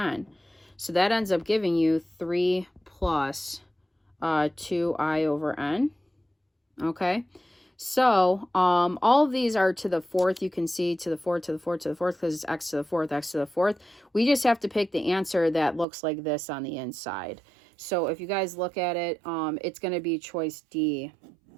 So that ends up giving you 3 plus 2I over n. Okay. So all of these are to the fourth. You can see to the fourth, to the fourth, to the fourth, because it's x to the fourth, x to the fourth. We just have to pick the answer that looks like this on the inside. So if you guys look at it, it's going to be choice D,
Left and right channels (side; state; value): left; drops out; at 15.9 s